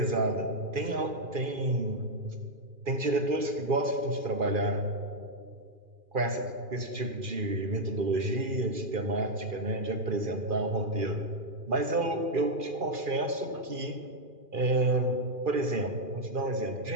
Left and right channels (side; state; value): left; late; 2.4 ms